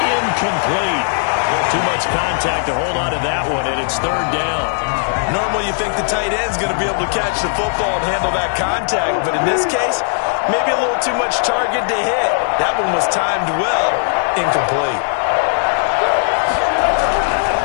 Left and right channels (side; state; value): right; silent; 68 dB below the other